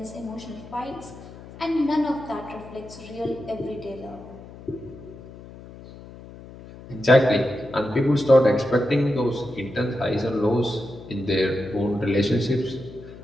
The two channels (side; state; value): left; noise; hum, 17 dB below the sound